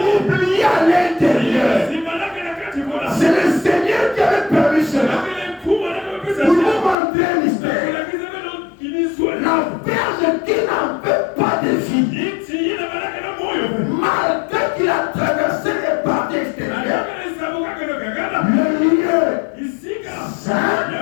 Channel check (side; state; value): right; drops out; at 7.0 s